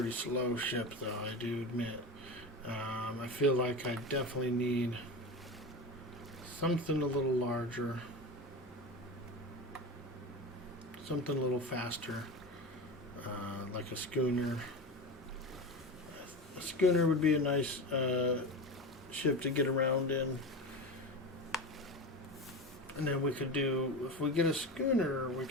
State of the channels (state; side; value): normal; both; correlation 0.26